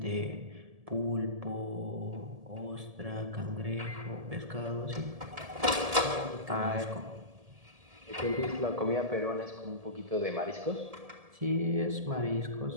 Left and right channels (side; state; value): left; late; 1.7 ms